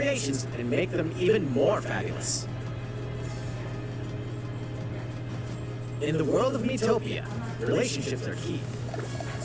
and make them even more fabulous. In the world of Miitopia, relationships are key.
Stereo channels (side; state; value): both; identical; correlation 1.00